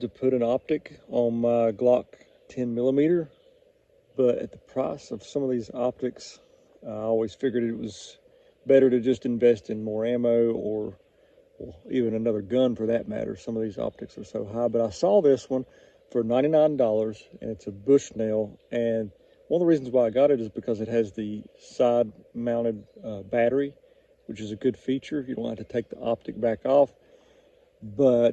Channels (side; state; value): both; identical; correlation 1.00